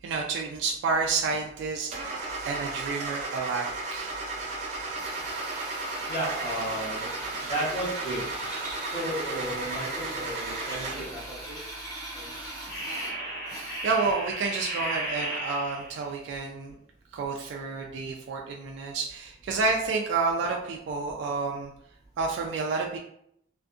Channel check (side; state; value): left; quieter; 3.1 dB